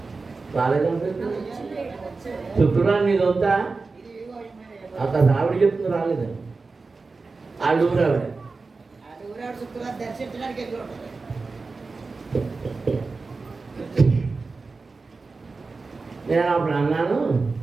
రాలేదంటే శుక్రవారం నీది వద్దా? అక్కడ ఆవిడ చెప్తుంది రాలేదని. ఆవిడ ఊరావిడ నేను అప్పుడు అన్నాను,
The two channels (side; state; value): left; quieter; 4.0 dB